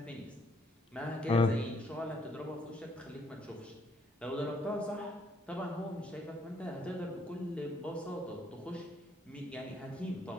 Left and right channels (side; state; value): both; normal; correlation 0.69